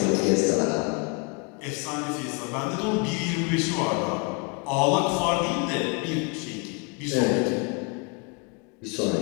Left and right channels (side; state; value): right; quieter; 32.0 dB